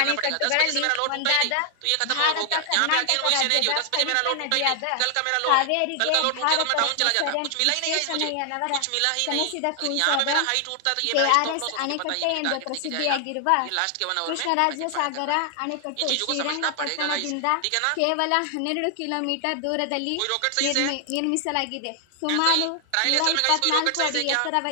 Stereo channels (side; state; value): both; different; correlation 0.00